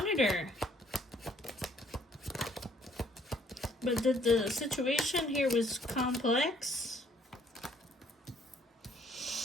her. But the situation here was complex.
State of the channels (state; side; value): normal; both; correlation 0.64